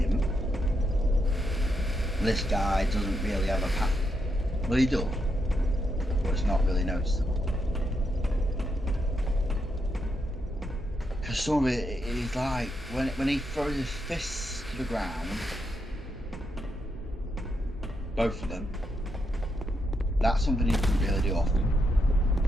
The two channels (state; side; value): normal; both; correlation 0.81